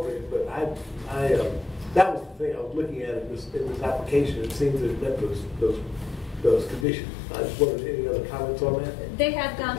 But that was the thing I was looking at in this application. It seemed that it met those those conditions. I just wondered, any other comments on that? They have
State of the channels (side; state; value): right; drops out; at 6.9 s